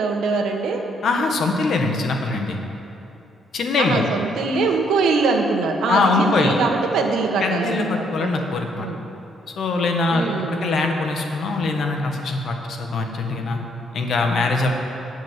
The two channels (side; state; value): both; normal; correlation 0.68